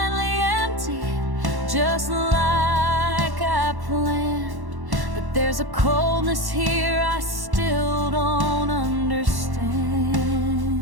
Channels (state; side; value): late; left; 1.1 ms